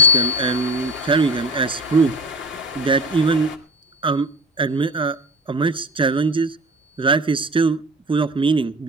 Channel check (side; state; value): both; normal; correlation 0.36